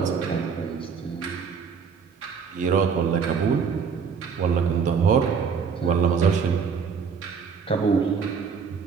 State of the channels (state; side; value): quieter; left; 6.1 dB